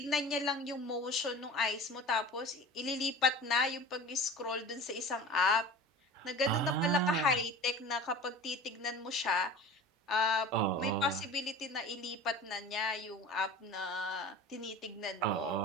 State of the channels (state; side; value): normal; both; correlation 0.37